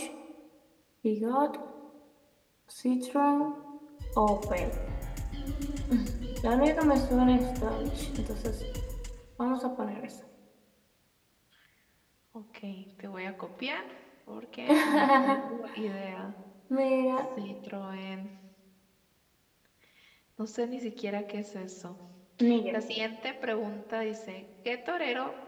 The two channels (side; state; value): both; identical; correlation 1.00